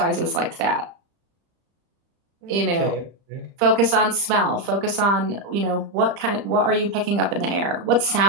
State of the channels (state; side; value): late; left; 35 ms